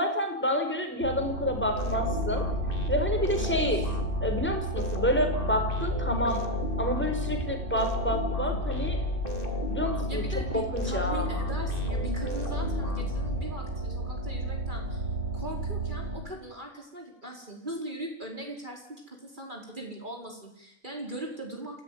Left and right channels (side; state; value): both; normal; correlation 0.04